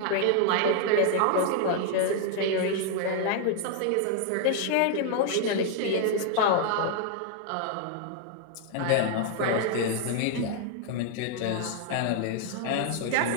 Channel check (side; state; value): both; different; correlation 0.00